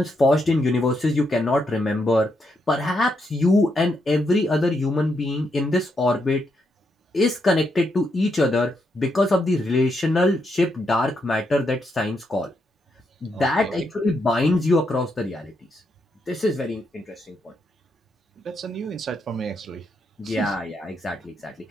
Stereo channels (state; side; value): normal; both; correlation 0.80